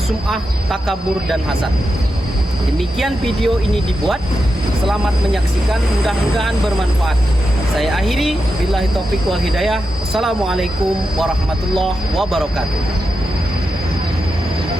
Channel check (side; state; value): both; normal; correlation 0.88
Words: takabur, dan hasad. Demikian video ini dibuat. Selamat menyaksikan, mudah-mudahan bermanfaat. Saya akhiri, billahi taufiq wal hidayah. Wassalamualaikum warahmatullahi wabarakatuh.